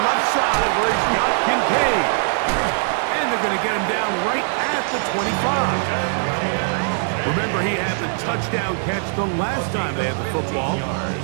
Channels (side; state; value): left; silent; 65 dB below the other